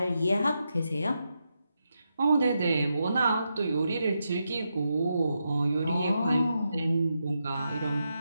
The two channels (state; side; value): inverted; both; correlation -0.85